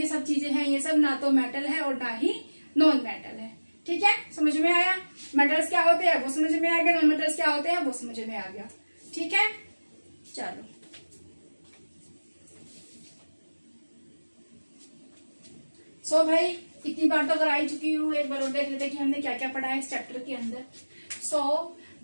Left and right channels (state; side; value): inverted; both; correlation -1.00